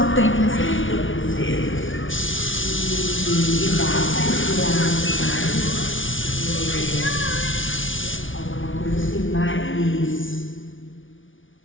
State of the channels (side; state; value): right; late; 0.57 ms